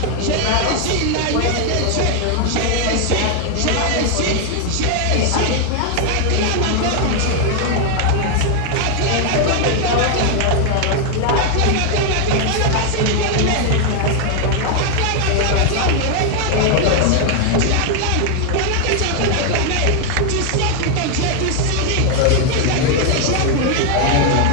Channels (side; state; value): both; different; correlation 0.00